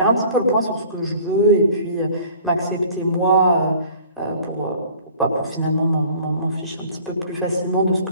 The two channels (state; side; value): inverted; both; correlation -0.50